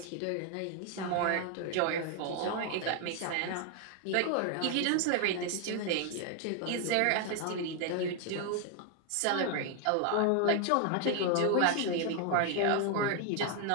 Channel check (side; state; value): both; different; correlation 0.00